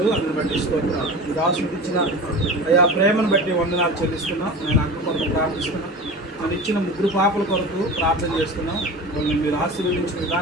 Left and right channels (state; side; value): normal; both; correlation 0.33